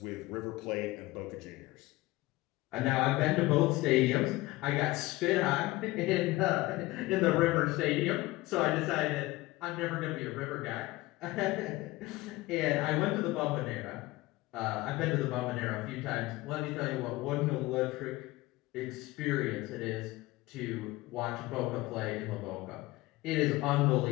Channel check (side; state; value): right; quieter; 19.7 dB